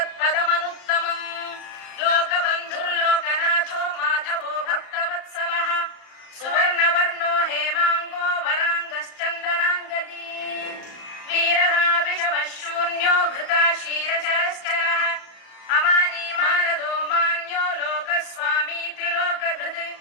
लोकबन्धुर्लोकनाथो माधवो भक्तवत्सलः सुवर्णवर्णो हेमाङ्गो वराङ्गश्चन्दनाङ्गदी वीरः विषमः शून्यो घृता क्षीरचरश्चरः अमानी मानदो मान्यो लोकस्वामी त्रिलोकधृत्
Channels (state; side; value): late; right; 34 ms